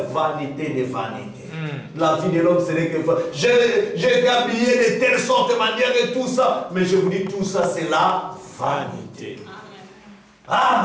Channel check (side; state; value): both; identical; correlation 1.00